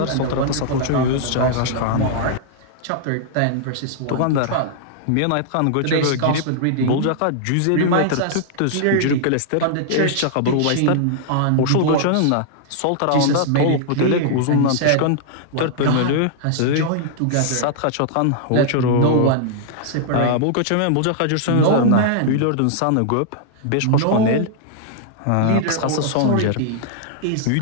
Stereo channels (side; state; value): both; different; correlation -0.01